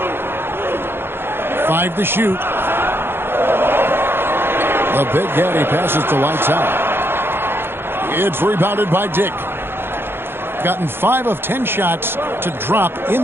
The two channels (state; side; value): late; left; 0.11 ms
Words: 5 to shoot. The Big Daddy passes to lights out. It's rebounded by Dick. Gotten 5 of 10 shots to drop in